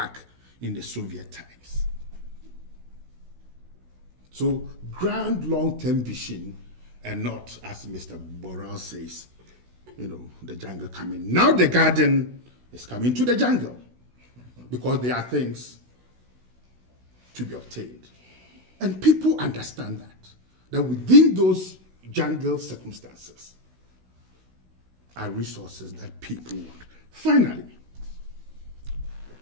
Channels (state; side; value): late; left; 16 ms